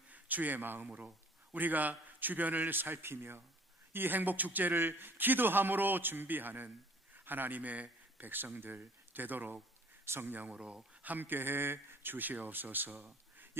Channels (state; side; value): normal; both; correlation 0.54